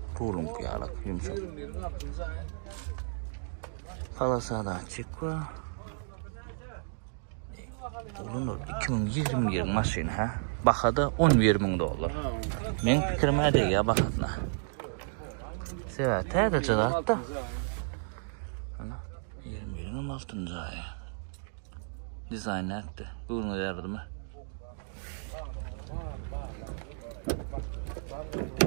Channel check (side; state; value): left; silent; digital silence